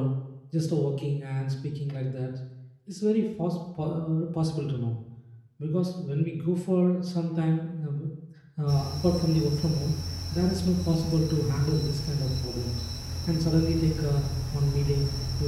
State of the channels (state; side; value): identical; both; correlation 1.00